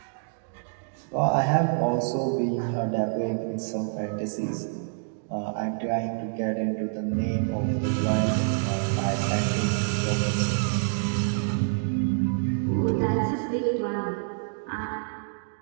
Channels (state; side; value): silent; left; digital silence